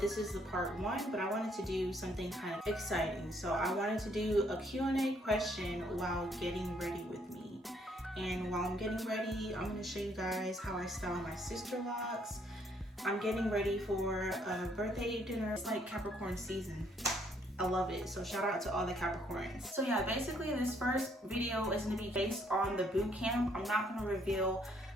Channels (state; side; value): normal; both; correlation 0.68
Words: is the part 1, but I wanted to do something kind of exciting. So I wanted to do a Q&A question while getting ready with me. And while I'm getting ready, I'm going to show you guys how I style my Sisterlocks. I'm getting ready for a birthday dinner. It's like Capricorn season. I love it. So shout out to all the Capricorns. So yeah, basically this first video is going to be based on the boot camp. I'm not going to reveal